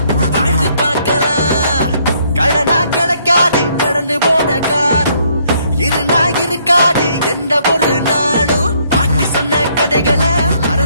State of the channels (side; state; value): both; inverted; correlation -0.68